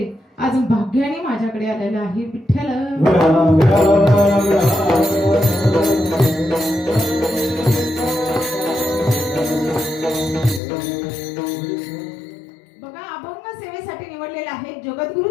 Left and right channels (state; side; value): drops out; right; at 10.6 s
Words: आज भाग्याने माझ्याकडे आलेला आहे. विठ्ठल बघा, अभंग सेवेसाठी निवडलेला आहे जगद्गुरु